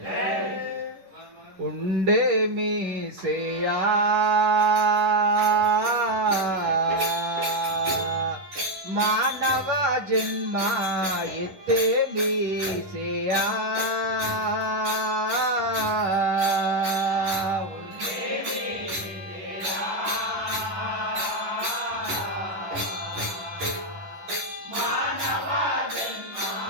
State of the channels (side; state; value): left; late; 10 ms